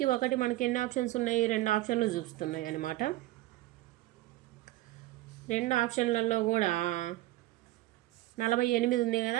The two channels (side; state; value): left; quieter; 17.1 dB